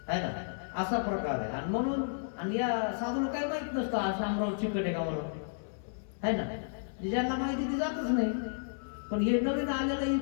आहे ना. असा प्रकार आहे. आणि म्हणून आणि या साधूला काही माहित नसतं हा शामराव चिकट आहे का म्हणून, आहे ना. ज्यांना माहिती ती जातच नाही. पण हे नवीन आलेलं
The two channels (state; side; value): silent; right; 56 dB below the other